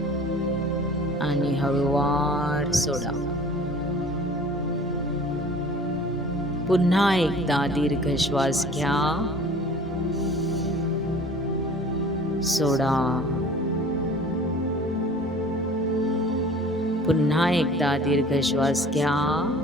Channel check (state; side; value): normal; both; correlation 0.47